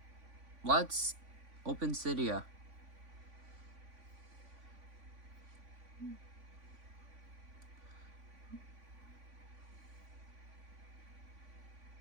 let's open Cydia.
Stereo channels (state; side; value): late; left; 3.5 ms